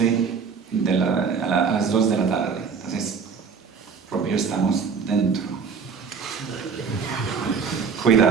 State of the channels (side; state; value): left; quieter; 5.9 dB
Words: a las 2 de la tarde. Entonces, propio estamos dentro.